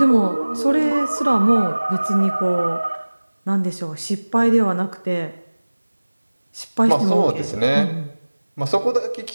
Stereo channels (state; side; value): inverted; both; correlation -1.00